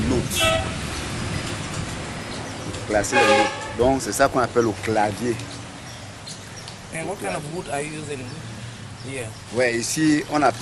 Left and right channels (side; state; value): both; identical; correlation 1.00